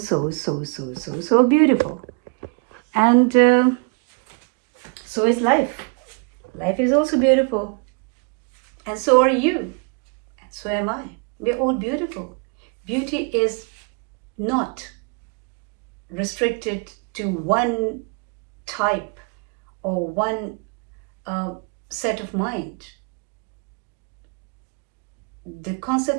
beautiful. And so is life. Life is also beautiful. And so are you. And so am I. We're all beautiful. Beauty is not restricted to one type or one set of mind. The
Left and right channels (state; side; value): quieter; left; 35.4 dB